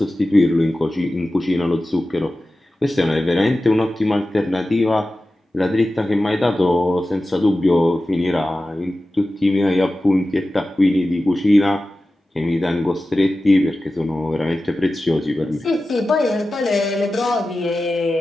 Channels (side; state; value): both; normal; correlation 0.95